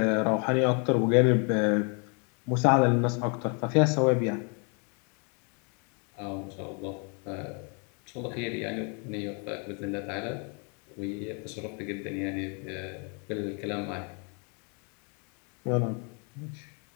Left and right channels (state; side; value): quieter; right; 36.8 dB